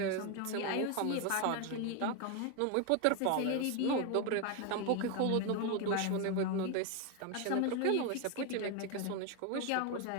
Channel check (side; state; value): both; different; correlation 0.01